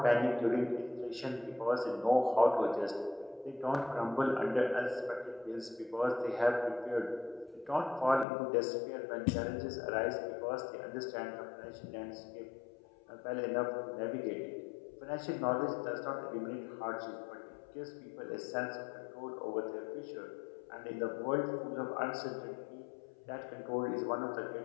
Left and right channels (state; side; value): drops out; right; at 8.2 s